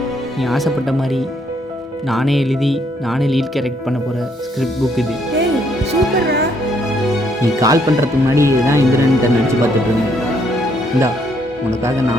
நீ ஆசைப்பட்ட மாதிரி நானே எழுதி நானே லீட் கேரக்ட் பண்ண போகிற ஸ்கிரிப்ட் புக் இது. ஏய் சூப்பர்ரா. நீ கால் பண்ணுறதுக்கு முன்னாடி இதுதான் இந்திரன் நினச்சி பார்த்துட்டு இருந்தேன். இந்தா உனக்காக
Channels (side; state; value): both; normal; correlation 0.70